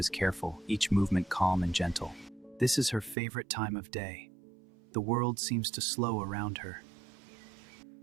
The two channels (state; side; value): drops out; left; at 3.2 s